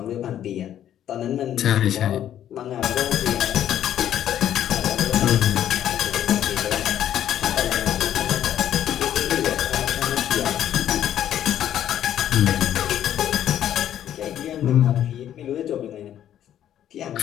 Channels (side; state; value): right; quieter; 10.9 dB